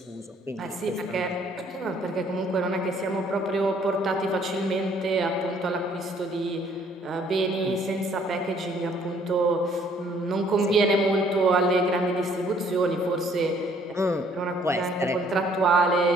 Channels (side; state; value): both; normal; correlation 0.62